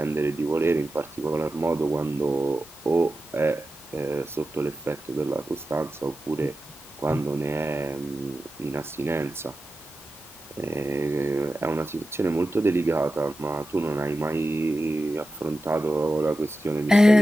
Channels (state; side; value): normal; both; correlation 0.92